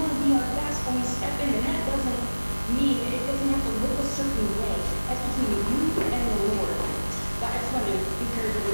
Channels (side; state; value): both; inverted; correlation -1.00